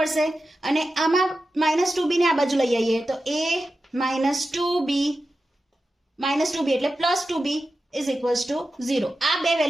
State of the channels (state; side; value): normal; both; correlation 0.92